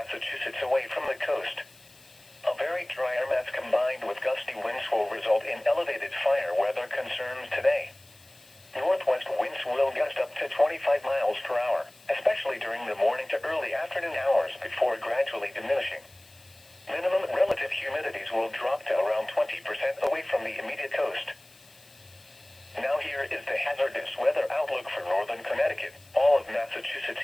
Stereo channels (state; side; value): noise; left; hiss, 26 dB below the sound